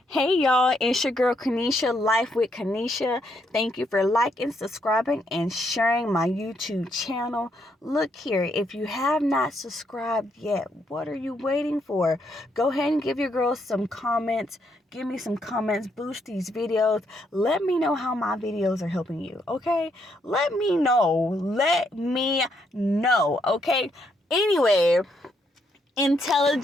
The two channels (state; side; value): normal; both; correlation 0.75